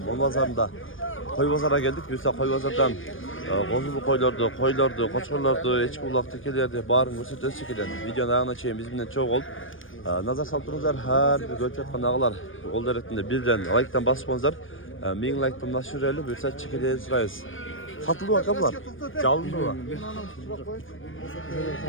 Monvazarı'nda koy pazara geldik. Biz de koy pazardan kozulu koylardı, koçlardı, eçki ulak tekelerdi, barın gösterdi şekilde videonun ayağına çeyin bizimle çok oldu. Nazar saltırınızlar her bir görüp yatkan ağalar kol deretinde birden like'tan basıpsınızlar. Min like'tan nasıl öyle bir saat çekileye sırayız. Satıldı bakalım. Calındı mı?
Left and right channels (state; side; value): late; right; 0.58 ms